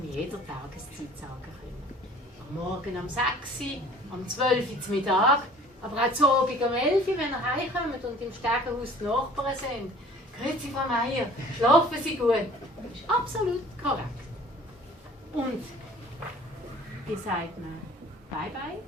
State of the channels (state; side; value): normal; both; correlation 0.50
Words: jeder Tageszeit sagen können. Am Morgen um 6 Uhr, am 12 Uhr zum Mittag, aber auch zu Abend um 11 Uhr, wenn ihr heimkommt und im Stegenhaus die Nachbarn sind. Grüezi, Frau Meier, schlafen Sie gut? Das ist absolut korrekt. Und wie sagt man Bye-bye?